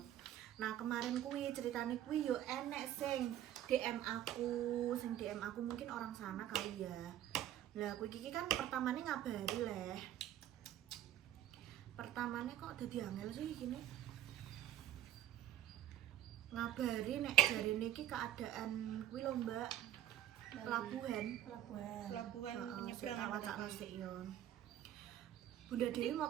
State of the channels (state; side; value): quieter; left; 12.0 dB